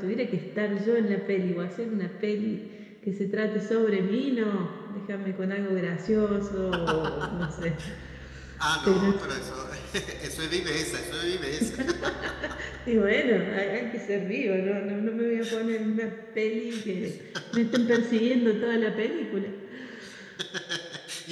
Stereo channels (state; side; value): identical; both; correlation 1.00